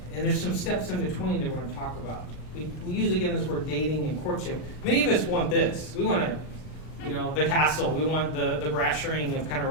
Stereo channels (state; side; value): late; right; 39 ms